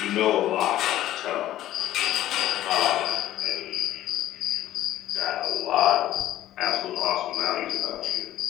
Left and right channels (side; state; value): right; quieter; 13.8 dB